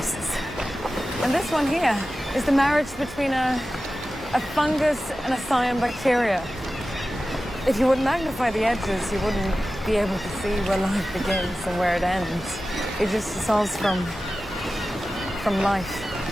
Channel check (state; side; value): normal; both; correlation 0.94